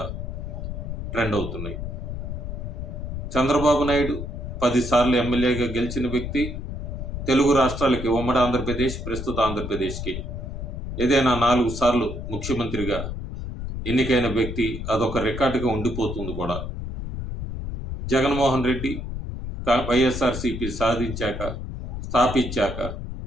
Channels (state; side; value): noise; left; rumble, 6 dB below the sound